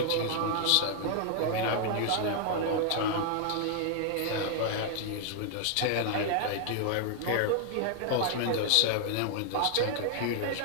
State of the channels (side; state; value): both; different; correlation 0.00